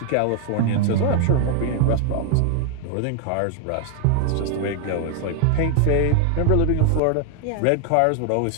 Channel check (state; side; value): different; both; correlation 0.00